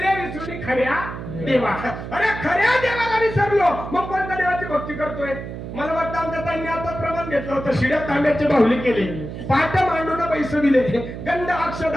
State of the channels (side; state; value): right; noise; hum, 9 dB below the sound